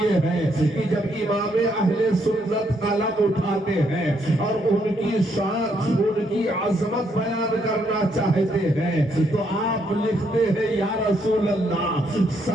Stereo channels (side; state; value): both; normal; correlation 0.74